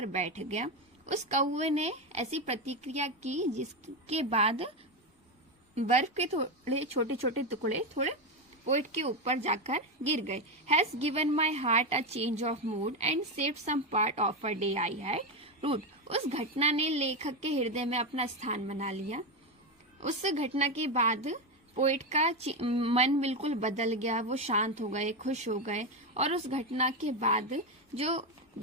बैठ गया। उस कौवे ने ऐसी प्रतिक्रिया की जिसके बाद बर्फ के थोड़े छोटे छोटे टुकड़े थोड़े पोइट के ऊपर जाकर गिर गए। Has given my heart a change of mood and saved some part of a day I had rued. उस घटना ने लेखक के हृदय में अपना स्थान बना लिया। उस घटना के बाद पोइट का मन बिल्कुल बदल गया, वो शांत हो गए, खुश हो गए। और उस घटना के बाद जो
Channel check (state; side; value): normal; both; correlation 0.11